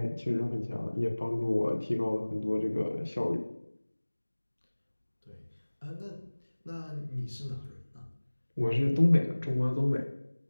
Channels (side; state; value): both; inverted; correlation -1.00